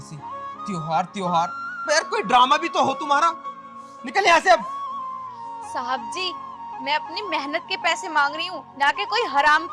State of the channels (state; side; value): identical; both; correlation 1.00